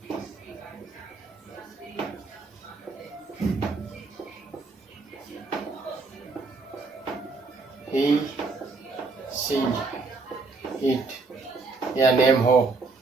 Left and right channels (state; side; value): quieter; left; 4.0 dB